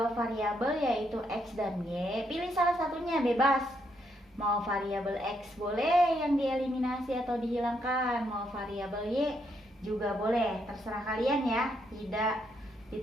variabel yaitu x dan y, pilih salah satunya bebas. Mau variabel x boleh yang dieliminasi atau dihilangkan, mau variabel y juga boleh, terserah kalian ya, tidak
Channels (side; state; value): both; normal; correlation 0.76